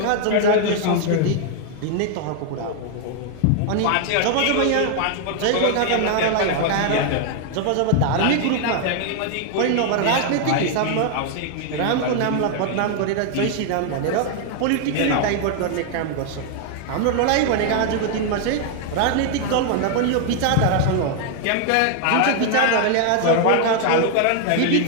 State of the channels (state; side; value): different; both; correlation 0.00